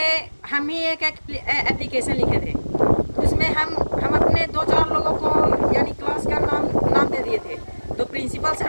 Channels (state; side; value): inverted; both; correlation -1.00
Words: हम ही एक एप्लीकेशन लिखे थे। तो उसमें हम अपने 2-4 लोगों को यानी क्लास का नाम दे दिए थे। तो प्रिंसिपल सर